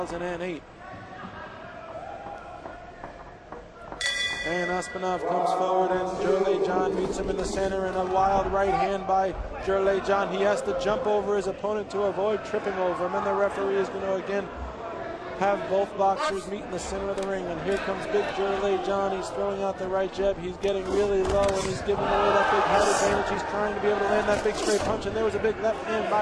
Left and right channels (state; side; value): identical; both; correlation 1.00